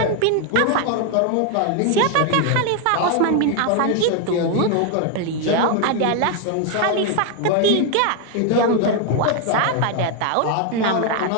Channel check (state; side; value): different; both; correlation 0.01